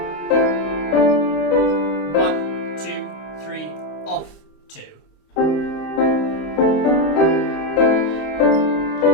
One, two, three, off, 2.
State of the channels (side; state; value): right; late; 26 ms